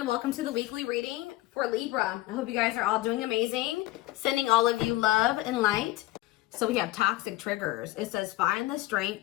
welcome to the weekly reading for Libra. I hope you guys are all doing amazing. Sending all of you love and light. So we have toxic triggers. It says find the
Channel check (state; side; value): quieter; right; 17.7 dB